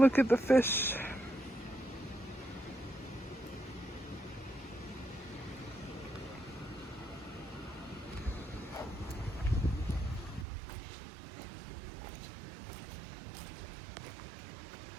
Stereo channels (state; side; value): drops out; left; at 10.5 s